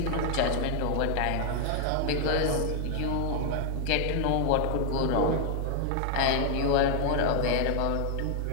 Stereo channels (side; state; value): both; different; correlation 0.00